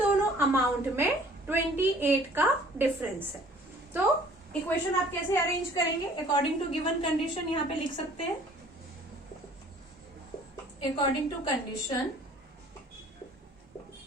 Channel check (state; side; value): normal; both; correlation 0.53